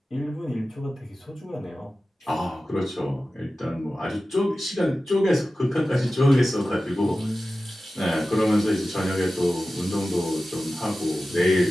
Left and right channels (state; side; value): normal; both; correlation 0.95